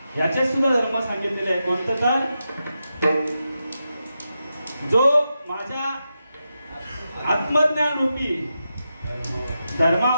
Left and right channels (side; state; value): both; inverted; correlation -0.88